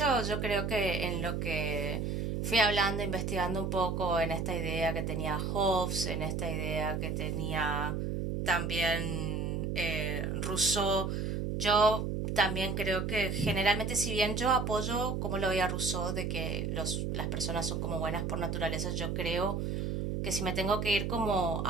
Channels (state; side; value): noise; right; hum, 1 dB below the sound